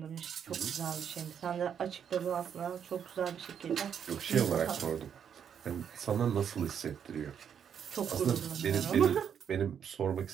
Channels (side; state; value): left; quieter; 8.1 dB